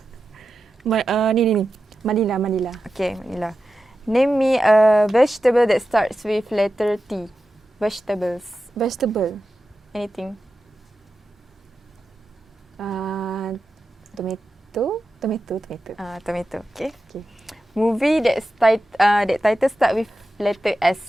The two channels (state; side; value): normal; both; correlation 0.92